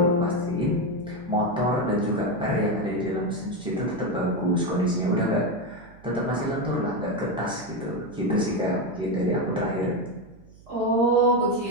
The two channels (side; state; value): right; noise; hum, 24 dB below the sound